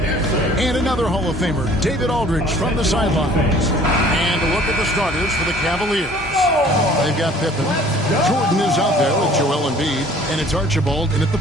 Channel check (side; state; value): both; normal; correlation 0.52